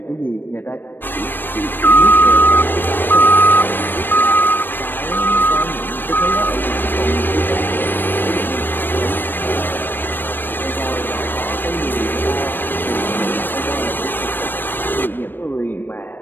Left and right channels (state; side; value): late; right; 0.094 ms